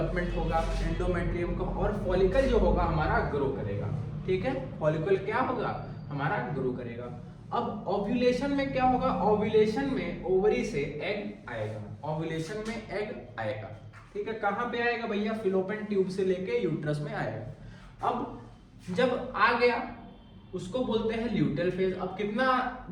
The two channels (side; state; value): both; identical; correlation 1.00